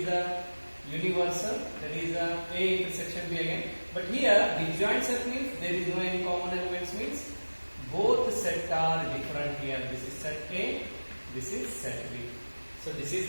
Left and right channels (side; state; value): both; inverted; correlation -1.00